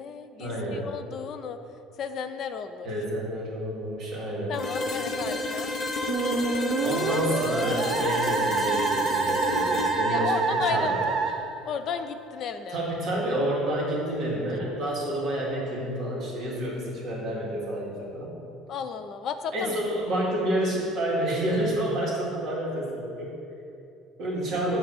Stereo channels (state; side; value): normal; both; correlation 0.51